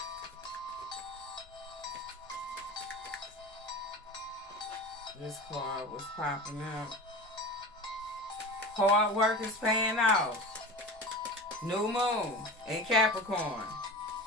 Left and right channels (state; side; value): normal; both; correlation 0.32